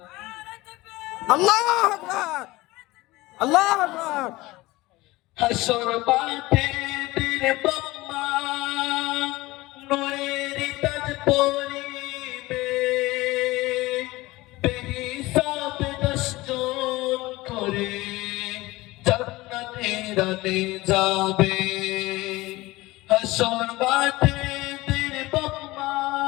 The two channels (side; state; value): right; quieter; 19.9 dB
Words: আল্লাহু আকবার, আল্লাহু আকবার। হাসর মাঠে বীর বাম্মা নূরের তাজ পরিবে। বেহিসাব 10 জন করে জান্নাতে রানে যাবে। হাসর মাঠে বীর বাম্মা